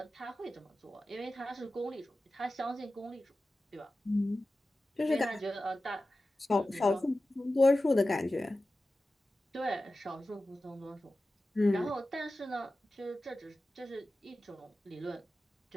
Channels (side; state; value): both; normal; correlation 0.94